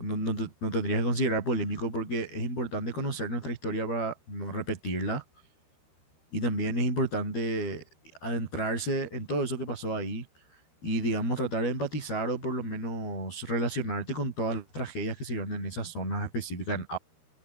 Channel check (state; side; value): late; right; 13 ms